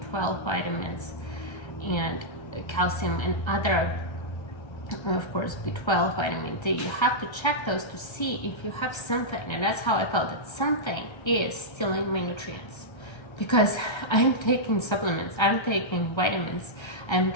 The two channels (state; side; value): late; right; 1.3 ms